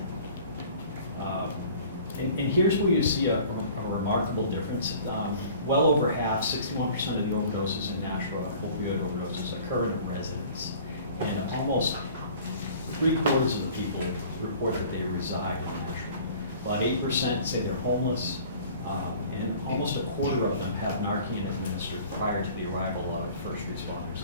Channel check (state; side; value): inverted; both; correlation -0.48